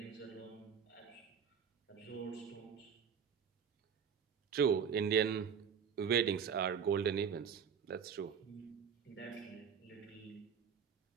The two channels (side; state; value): left; quieter; 7.1 dB